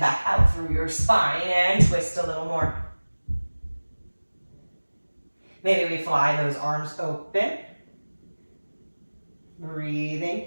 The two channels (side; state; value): both; inverted; correlation -1.00